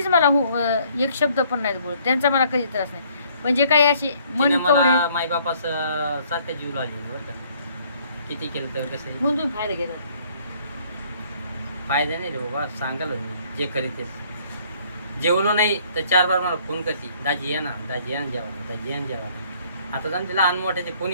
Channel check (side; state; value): both; inverted; correlation -0.62